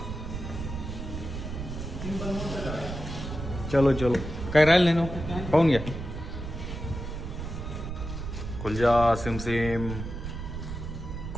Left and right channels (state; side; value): noise; right; rumble, 7 dB below the sound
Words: चलो चलो. काय राहिलं नाही ना, पाहून घ्या. कुलजा सिमसिम,